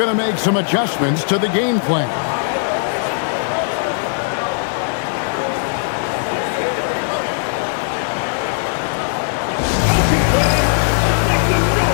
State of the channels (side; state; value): right; silent; digital silence